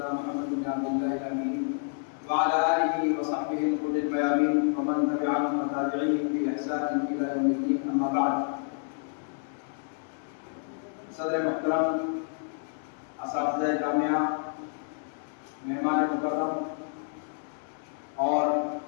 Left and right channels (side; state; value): right; silent; 59 dB below the other